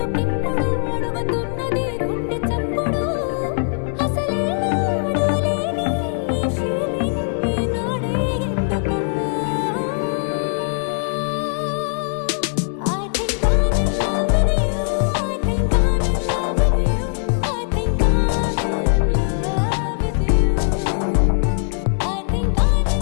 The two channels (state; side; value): silent; right; 65 dB below the other